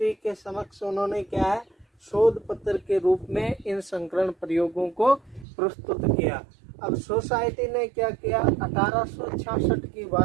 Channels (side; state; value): left; drops out; at 5.5 s